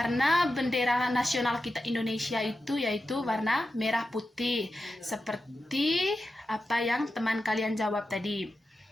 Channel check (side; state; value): both; normal; correlation 0.91